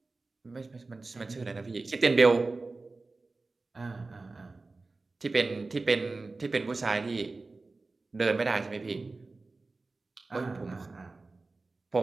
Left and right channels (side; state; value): left; quieter; 3.5 dB